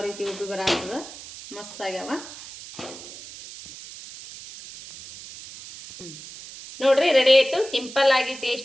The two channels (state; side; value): noise; right; hiss, 15 dB below the sound